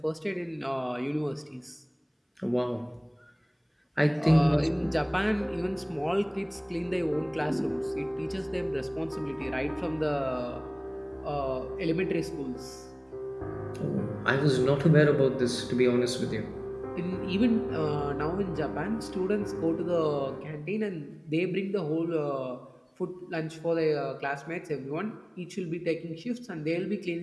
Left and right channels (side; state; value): both; identical; correlation 1.00